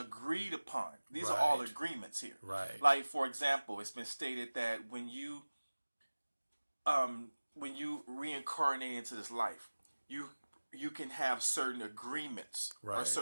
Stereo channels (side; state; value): both; inverted; correlation -1.00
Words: upon. These are all Right. agreements here. Right. Like, for example, it's been stated that when you reincarnate into this life, you can have certain agreements or Right.